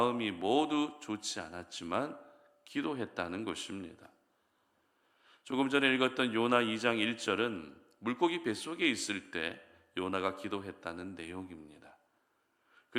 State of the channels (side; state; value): both; identical; correlation 1.00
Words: 모두 좋지 않았지만 기도했다는 것입니다. 조금 전에 읽었던 요나 2장 1절은 물고기 뱃속에 있을 때 요나가 기도했다는 내용입니다.